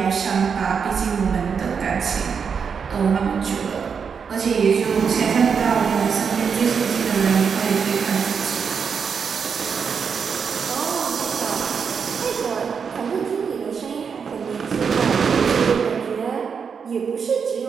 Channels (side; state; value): left; quieter; 6.3 dB